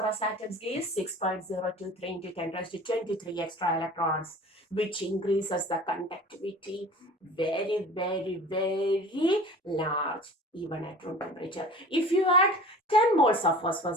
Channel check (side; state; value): both; normal; correlation 0.42